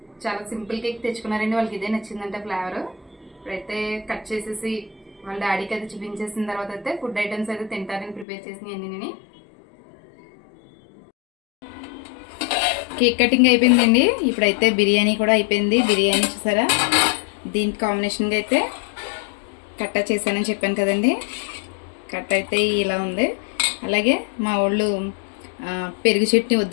చాలా సింపుల్ కేక్ తెచ్చుకున్నారండి. వాళ్ళకి ఇదే నచ్చిందంటే ఫ్లేవర్. ఇప్పుడైతే కట్ చేసేసి వాళ్ళ డాడీకి అయితే చూపించేసిన తర్వాత అయితే ఫుడ్ ఐటమ్స్ అయితే తింటారని ప్రిపేర్ చేసినాయి అన్ని. కేక్ కటింగ్ అయిపోయిందండి. ఇప్పుడైతే బిర్యానీ కూడా అయిపోయింది. బిర్యానీ చూసారా, దీనికి కాంబినేషన్గా అయితే కట్ట చేశానని చెప్పాను కదండి. కట్ట అయితే ఇలా ఉంది. అలాగే మా వాళ్ళు పెరుగు చట్నీ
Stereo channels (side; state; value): right; drops out; at 8.2 s